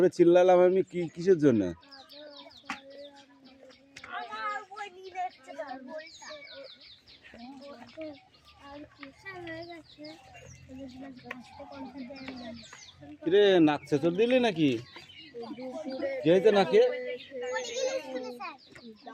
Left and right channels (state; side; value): identical; both; correlation 1.00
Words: চিল্লালাম আমি, কি কিসের জন্য? কিরে নাক চেঁচড় দিলি নাকি? কি হয়েছে নাকে?